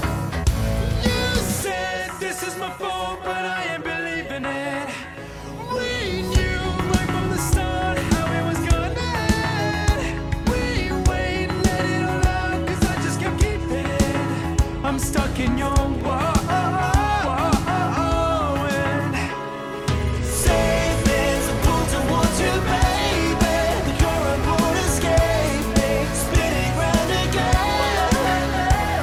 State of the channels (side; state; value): both; identical; correlation 1.00